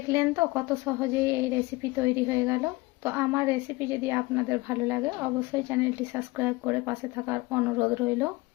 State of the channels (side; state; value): right; quieter; 22.1 dB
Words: তো কত সহজেই এই রেসিপি তৈরি হয়ে গেল। তো আমার রেসিপি যদি আপনাদের ভালো লাগে অবশ্যই চ্যানেলটি সাবস্ক্রাইব করে পাশে থাকার অনুরোধ রইল।